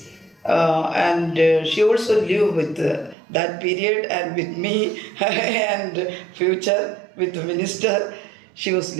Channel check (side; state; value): left; drops out; at 3.2 s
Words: and she also lived with that period and with me and future with the minister she was